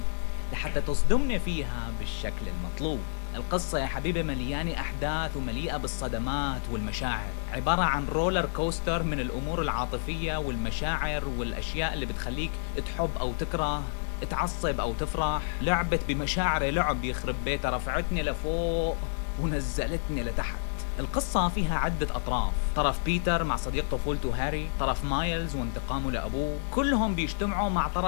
لحتى تصدمنا فيها بالشكل المطلوب. القصة يا حبيبي مليانة أحداث ومليئة بالصدمات والمشاعر، عبارة عن رولر كوستر من الأمور العاطفية والمشاعر والأشياء اللي بتخليك تحب أو تكره، تعصب أو تفرح. لعبت بمشاعر لعب يخرب بيتها، رفعتني لفوق ونزلتني لتحت. القصة فيها عدة أطراف، طرف بيتر مع صديق طفولته هاري، طرف مايلز وانتقامه لأبوه، كلهم بيجتمعوا مع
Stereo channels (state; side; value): silent; right; digital silence